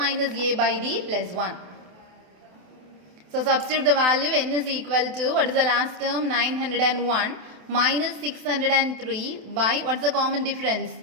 a by d plus 1. So substitute the value. N is equal to, what is the last term? 901 minus 603 by, what's the common difference?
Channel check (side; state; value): left; late; 27 ms